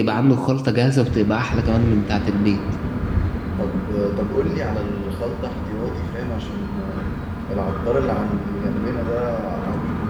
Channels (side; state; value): both; identical; correlation 1.00